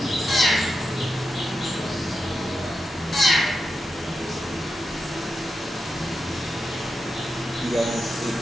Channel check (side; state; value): both; normal; correlation 0.88